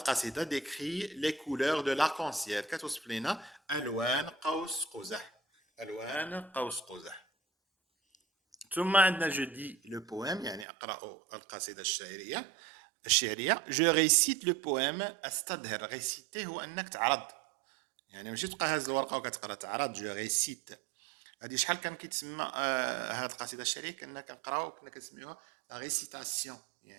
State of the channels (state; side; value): drops out; left; at 10.7 s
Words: décrit les couleurs de l'arc-en-ciel. كتوصف لينا ألوان قوس قزح. ألوان قوس قزح. ثم عندنا je dis le poème يعني أقرأ القصيدة الشعرية. Je récite le poème. أستظهر. réciter هو أنك تعرض. يعني ماشي تبقى هاز الورقة وكتقرا تعرض. je récite. هذه شحال كان كيتسمى هذه القصيده الشعريه كنا كنقراو كنا كنسميوها لا ريسيتاسيون